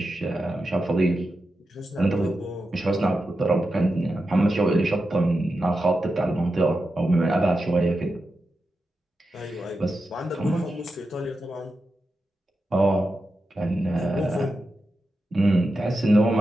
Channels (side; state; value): both; normal; correlation 0.89